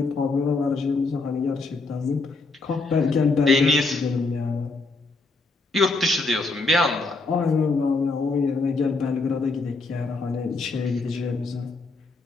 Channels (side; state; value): right; quieter; 3.7 dB